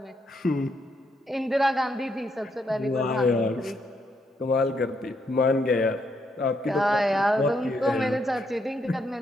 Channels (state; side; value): normal; both; correlation 0.76